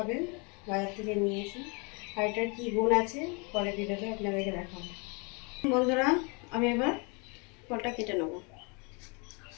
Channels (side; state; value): right; quieter; 32.0 dB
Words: বাজার থেকে নিয়েছি। আর এটার কী গুণ আছে পরে ভিডিওতে আপনাদেরকে দেখাবো। বন্ধুরা, আমি এবার ফলটা কেটে নেবো।